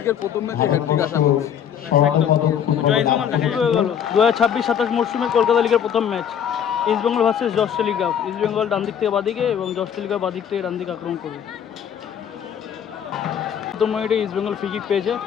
প্রথম ম্যাচে হ্যাটট্রিক আশা করছি। জয় ইস্ট বেঙ্গল দেখা হয়ে গেল 2026-27 মরশুমের কলকাতা লিগের প্রথম ম্যাচ ইস্ট বেঙ্গল ভার্সেস জস টেলিগ্রাফ। ইস্ট বেঙ্গল ডান দিক থেকে বাদিকে এবং জস টেলিগ্রাফ বাদিক থেকে ডান দিকে আক্রমণ করবে। প্রথম মিনিটে ইস্ট বেঙ্গল ফ্রি কিক পেয়েছে,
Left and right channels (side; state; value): right; quieter; 8.7 dB